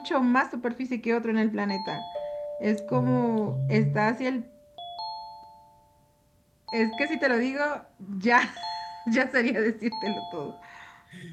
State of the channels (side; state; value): both; identical; correlation 1.00